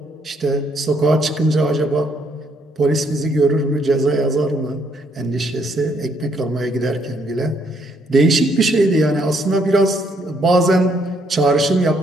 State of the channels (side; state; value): both; normal; correlation 0.70